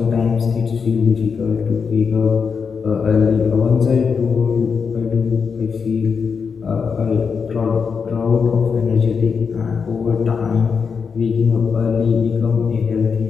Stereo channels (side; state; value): right; quieter; 5.8 dB